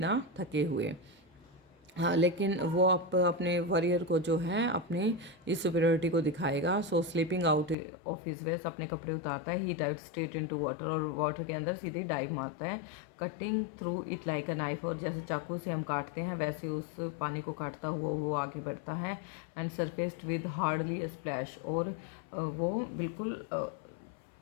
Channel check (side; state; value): right; drops out; at 7.8 s